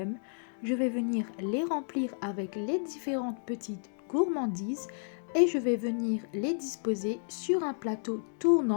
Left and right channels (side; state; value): right; silent; digital silence